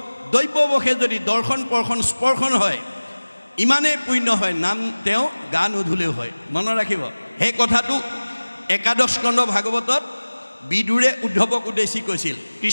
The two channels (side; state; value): both; inverted; correlation -1.00